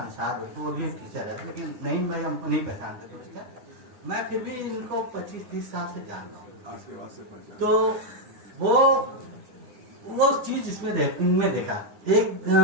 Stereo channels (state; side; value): late; left; 9.7 ms